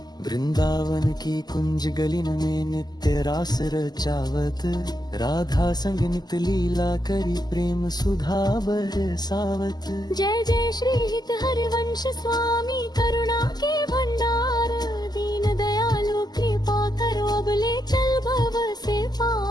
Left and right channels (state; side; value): late; right; 0.20 ms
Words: वृंदावन की कुंज गलिन में नित्य रास रचावत, राधा संग नित लीला करी प्रेम सुधा बरसावत। जय जय श्री हित हरिवंश स्वामी, करुणा के भंडार। दीन दयालु कृपा करो, अब ले चल भव से